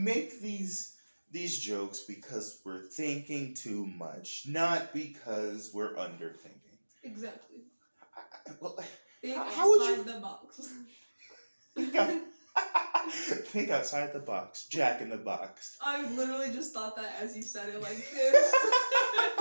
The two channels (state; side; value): inverted; both; correlation -1.00